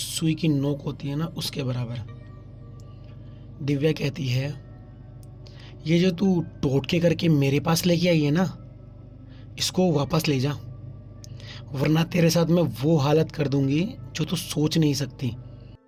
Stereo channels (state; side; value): identical; both; correlation 1.00